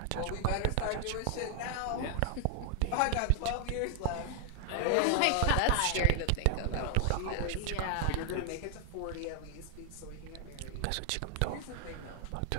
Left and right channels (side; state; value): both; different; correlation 0.00